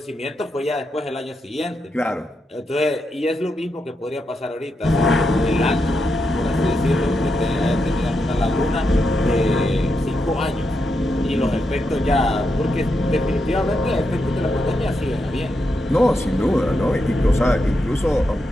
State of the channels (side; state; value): both; normal; correlation 0.84